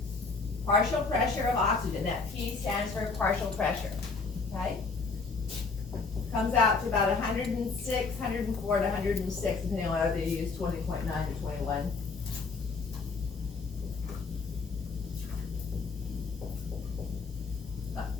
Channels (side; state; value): right; quieter; 4.4 dB